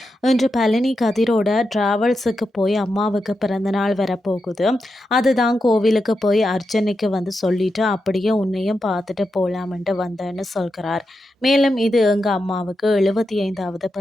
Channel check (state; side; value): normal; both; correlation 0.87